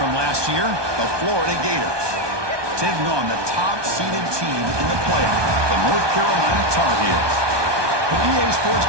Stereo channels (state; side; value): late; left; 1.2 ms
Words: last year, the Florida Gators, taking on the top-seeded team in the playoff, the North Carolina Tar Heels. From EA Sports